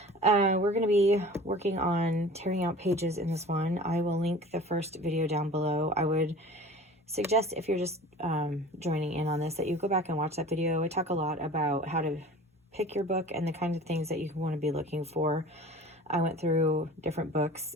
We're going to be working on tearing out pages in this one. I will link the first video down below. I would suggest if you're just joining in on this that you go back and watch that video. I talk a lot about how to pick your book and the kinds of things that you want to be looking for. I went through different books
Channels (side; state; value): both; normal; correlation 0.42